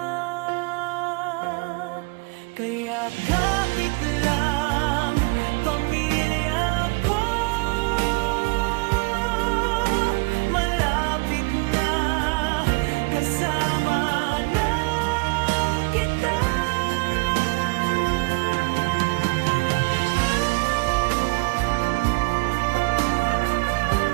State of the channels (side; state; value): left; quieter; 29.9 dB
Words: Kaya kapit lang pamilya ko, malapit na kasama na kita.